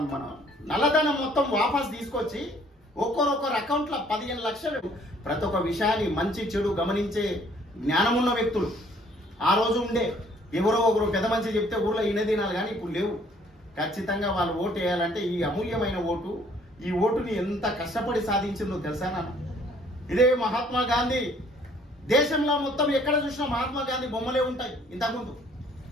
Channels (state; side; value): normal; both; correlation 0.60